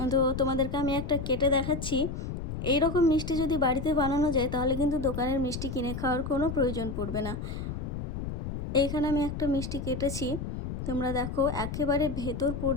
তো তোমাদেরকে আমি একটা কেটে দেখাচ্ছি। এই রকম মিষ্টি যদি বাড়িতে বানানো যায় তাহলে কিন্তু দোকানের মিষ্টি কিনে খাওয়ার কোনো প্রয়োজন পড়বে না। এইখানে আমি একটা মিষ্টি কেটেছি, তোমরা দেখো একেবারে ভেতর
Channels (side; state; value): left; noise; rumble, 5 dB below the sound